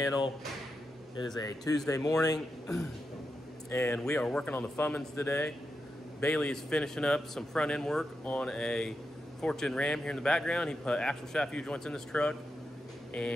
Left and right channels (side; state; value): both; normal; correlation 0.87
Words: It is a Tuesday morning and we are working on the Fummins today. Bailey is finishing up some front end work on a Fortune Ram here in the background. He put axle shaft U joints in this truck,